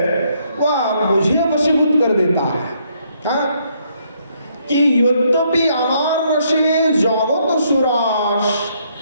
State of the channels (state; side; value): inverted; both; correlation -0.71